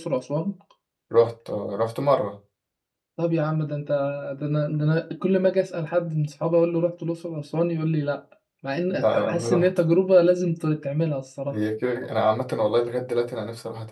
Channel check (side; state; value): both; identical; correlation 1.00